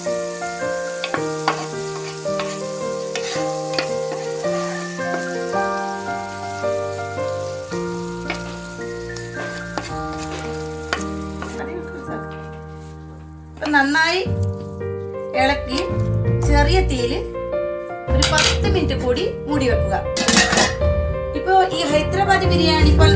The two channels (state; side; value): identical; both; correlation 1.00